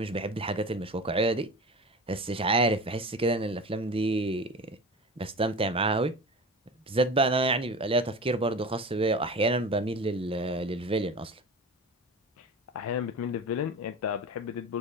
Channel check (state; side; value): normal; both; correlation 0.32